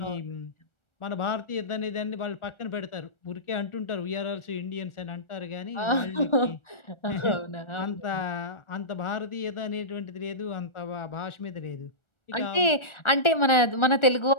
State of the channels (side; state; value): right; late; 1.4 ms